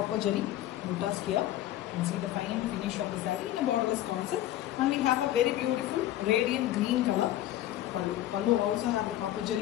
jari buttas here. You can see the fine finish of the saree in a borderless concept, and we have a very beautiful radiant green color pallu. Pallu also have the copper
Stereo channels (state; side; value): quieter; right; 13.6 dB